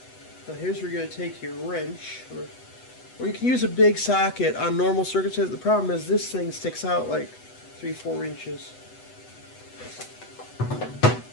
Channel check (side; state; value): right; late; 8.0 ms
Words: Now here's where you're going to take your wrench, or you can use a big socket on normal circumstances. The problem is this thing sticks out like 3-4 inches.